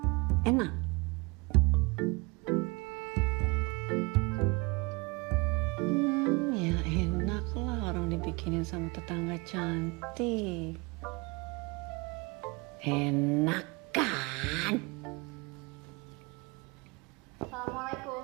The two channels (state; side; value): quieter; left; 27.1 dB